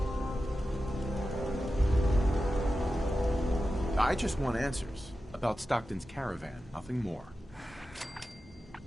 I just want answers about Stockton's caravan, nothing more.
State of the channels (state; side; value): normal; both; correlation 0.92